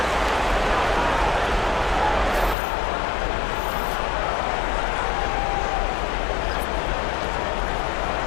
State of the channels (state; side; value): drops out; right; at 2.6 s